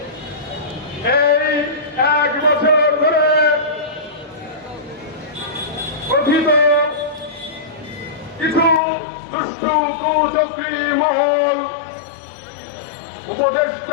এই 1 বছর ধরে কথিত কিছু দুষ্টু কুচক্রী মহল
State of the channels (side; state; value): right; drops out; at 8.8 s